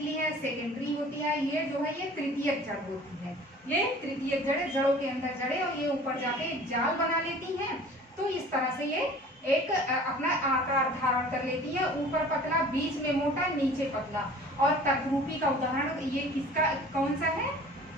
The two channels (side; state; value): both; normal; correlation 0.46